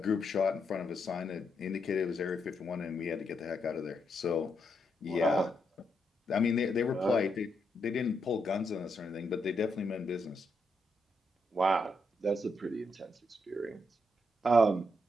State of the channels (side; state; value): both; normal; correlation 0.80